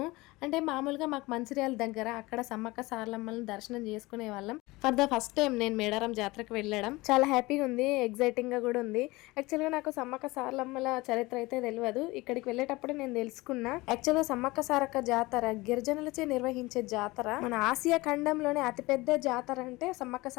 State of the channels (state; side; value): quieter; right; 21.6 dB